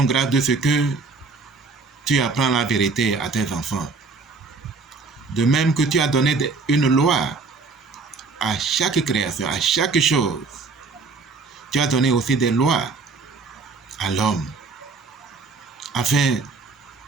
grâce de ce que tu apprends la vérité à tes enfants. De même que tu as donné une loi à chaque création, à chaque chose. Tu as donné aussi des lois à l'homme afin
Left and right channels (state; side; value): quieter; left; 4.2 dB